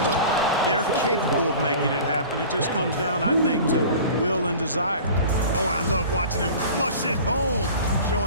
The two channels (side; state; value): both; inverted; correlation -0.40